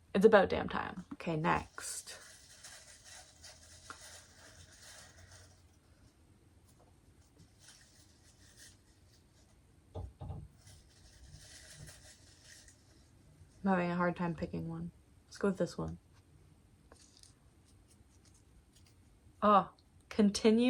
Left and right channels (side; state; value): both; identical; correlation 1.00